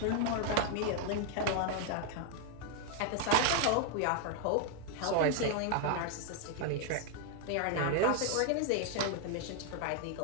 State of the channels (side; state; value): both; different; correlation 0.00